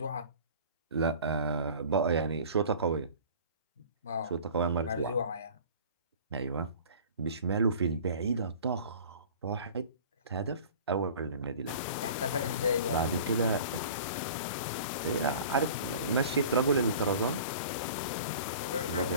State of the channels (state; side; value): inverted; both; correlation -0.43